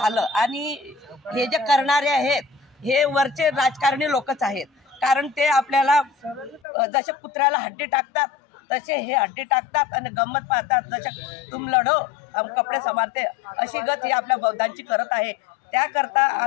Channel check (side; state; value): right; drops out; at 6.6 s